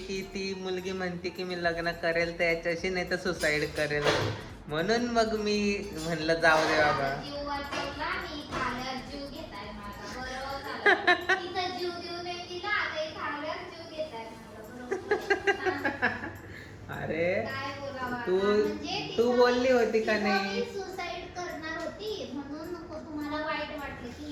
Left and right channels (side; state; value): both; identical; correlation 1.00